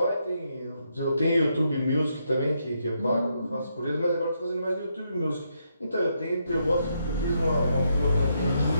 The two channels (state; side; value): inverted; both; correlation -0.78